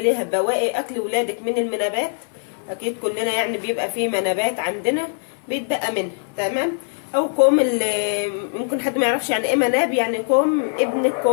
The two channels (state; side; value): silent; right; 56 dB below the other